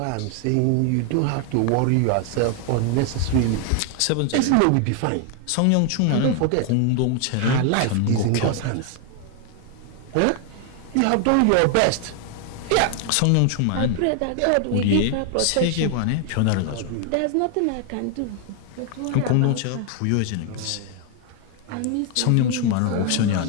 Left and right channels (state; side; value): different; both; correlation 0.00